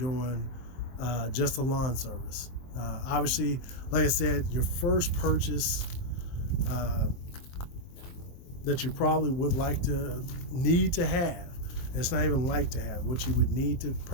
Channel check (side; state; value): right; late; 23 ms